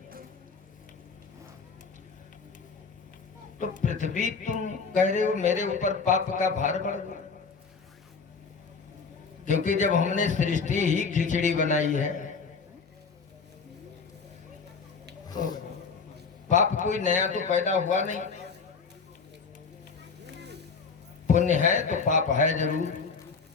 तो पृथ्वी तुम कह रहे हो मेरे ऊपर पाप का भार बढ़ गया, क्योंकि जब हमने सृष्टि ही खिचड़ी बनाई है तो पाप कोई नया तो पैदा हुआ नहीं। पुण्य है तो पाप है जरूर।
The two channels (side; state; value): right; quieter; 5.1 dB